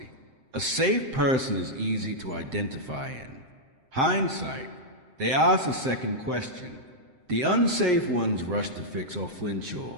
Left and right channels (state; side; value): late; left; 7.7 ms